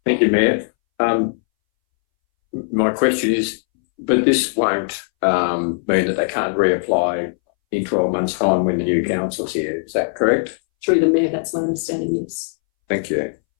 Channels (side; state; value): right; silent; 64 dB below the other